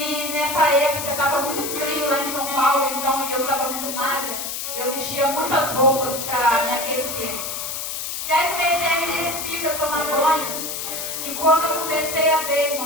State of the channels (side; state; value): left; noise; hiss, 5 dB below the sound